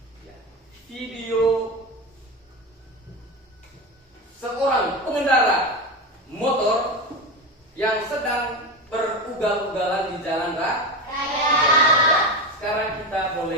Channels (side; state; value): both; normal; correlation 0.20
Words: ya, video seorang pengendara motor yang sedang berugal-ugalan di jalan raya. Sekarang kita